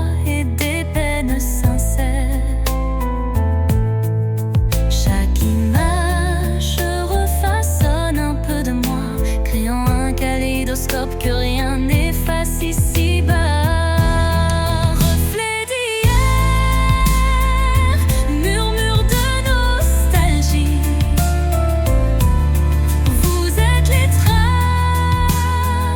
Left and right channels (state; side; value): identical; both; correlation 1.00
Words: et des peines sincères. Chaque image refaçonne un peu de moi, créant un kaléidoscope que rien n'efface ici-bas. Reflet d'hier, murmure de nostalgie, vous êtes les